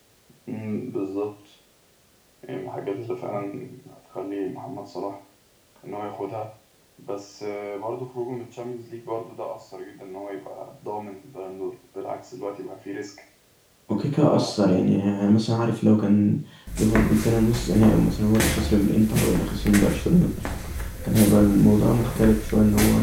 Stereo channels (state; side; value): identical; both; correlation 1.00